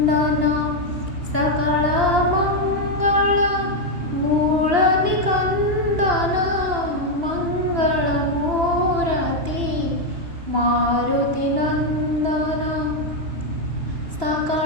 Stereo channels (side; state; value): left; late; 2.8 ms